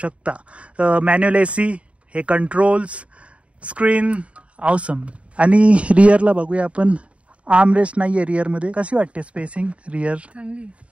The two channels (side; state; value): left; late; 0.063 ms